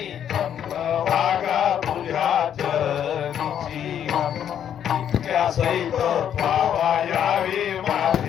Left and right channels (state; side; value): quieter; right; 9.4 dB